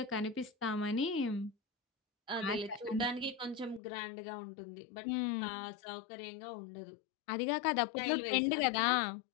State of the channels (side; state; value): right; drops out; at 3.8 s